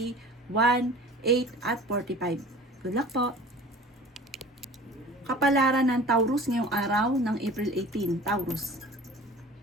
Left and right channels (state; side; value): normal; both; correlation 0.42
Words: 1, 8 at 45. Good luck po! Kapalaran ng Taurus ngayong araw ng April 18, Taurus.